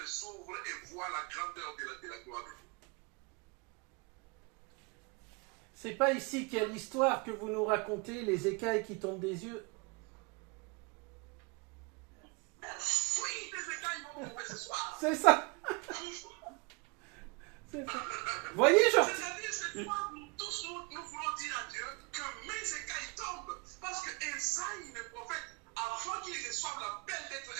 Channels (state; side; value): quieter; left; 29.1 dB